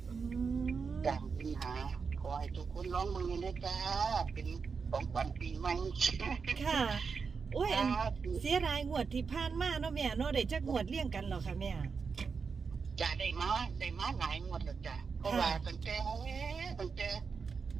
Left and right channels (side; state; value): left; quieter; 5.4 dB